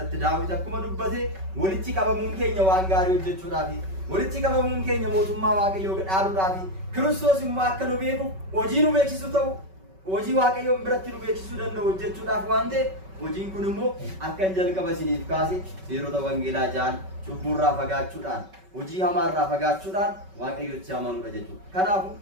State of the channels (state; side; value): late; left; 5.3 ms